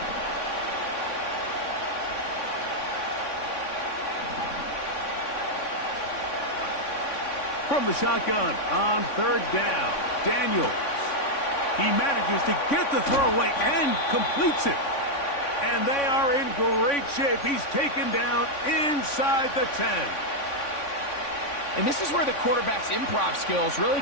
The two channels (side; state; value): right; late; 3.5 ms